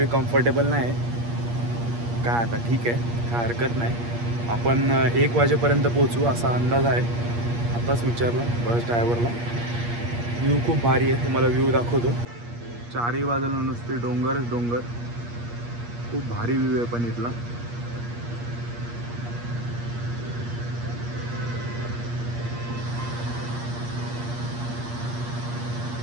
कम्फर्टेबल नाही. काय आता ठीक आहे, काय हरकत नाही. आपण 1 वाजेपर्यंत पोचू असा अंदाज आहे. आताच विचारलं बस ड्रायव्हरला. व्ह्यू खूप भारी आहे, तुम्हाला व्ह्यू दाखवतो. 4ही बाजूला नुसते डोंगरच डोंगर. खूप भारी व्ह्यू आहे पण इथला.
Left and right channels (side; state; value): left; late; 8.5 ms